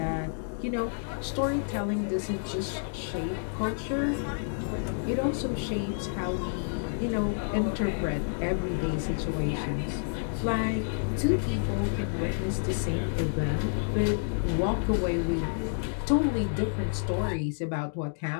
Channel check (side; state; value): right; silent; digital silence